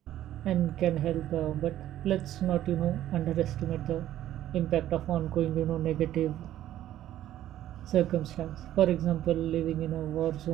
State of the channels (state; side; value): quieter; left; 12.7 dB